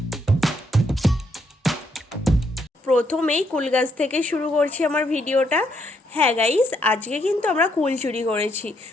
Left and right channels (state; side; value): normal; both; correlation 0.74